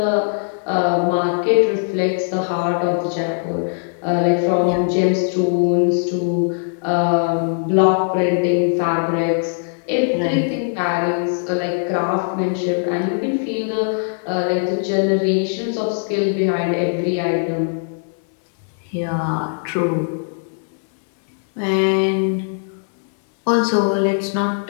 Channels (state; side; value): silent; right; 66 dB below the other